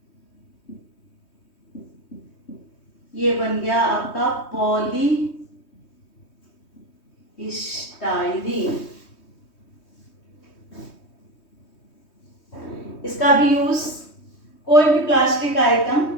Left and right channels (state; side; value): late; right; 3.2 ms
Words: ये बन गया आपका पॉलीस्टाइरीन। इसका भी यूज कोई भी प्लास्टिक आइटम